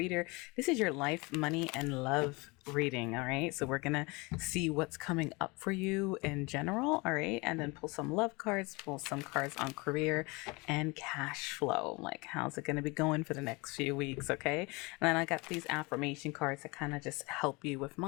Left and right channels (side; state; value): right; quieter; 26.0 dB